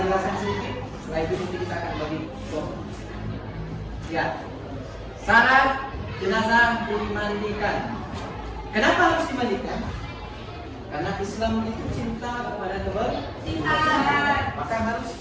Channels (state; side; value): identical; both; correlation 1.00